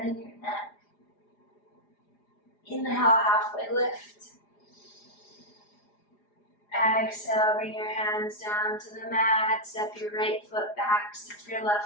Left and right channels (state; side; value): late; right; 4.9 ms